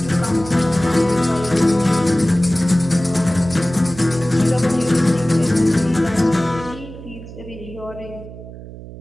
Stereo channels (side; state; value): right; noise; hum, 14 dB below the sound